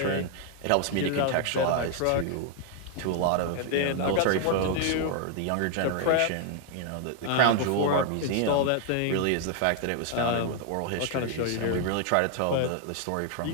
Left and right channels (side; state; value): both; different; correlation 0.00